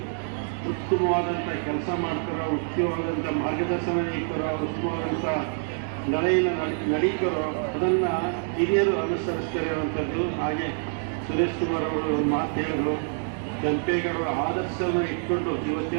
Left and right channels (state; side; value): silent; left; 56 dB below the other